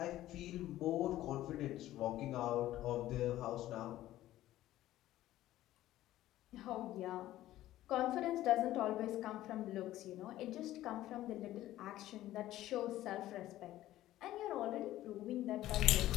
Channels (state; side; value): quieter; right; 14.5 dB